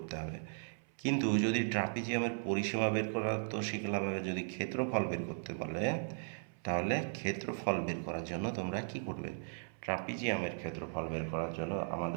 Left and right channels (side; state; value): left; silent; 53 dB below the other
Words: হবে। কিন্তু যদি ট্রাপিজিয়ামের পরিসীমা বের করা তো শিখলাম, যদি ক্ষেত্রফল বের করতে বলে তাহলে ক্ষেত্রফল বের করার জন্য তোমরা কি করবে? ট্রাপিজিয়ামের ক্ষেত্রফল বের করার জন্য